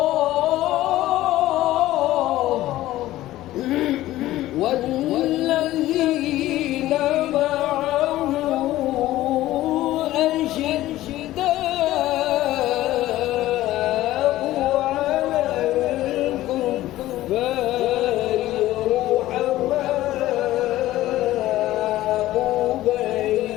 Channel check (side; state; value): right; quieter; 15.5 dB